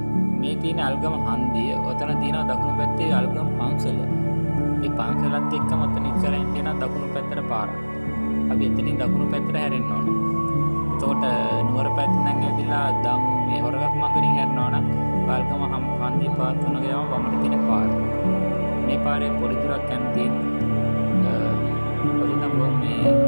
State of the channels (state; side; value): inverted; both; correlation -1.00